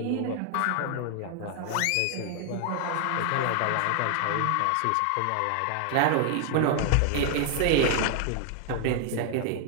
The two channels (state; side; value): different; both; correlation 0.00